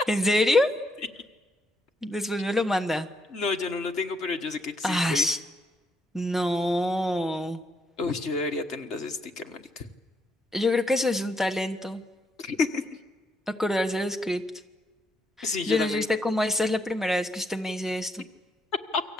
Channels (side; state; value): both; normal; correlation 0.76